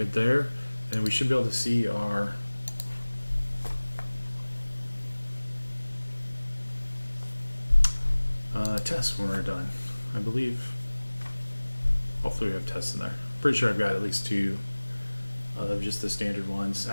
there. And we should be able to see our tests when we're done, I believe. Hopefully we have tests in there. Pretty sure I've got at least 2 of just the standard ones.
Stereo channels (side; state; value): both; inverted; correlation -1.00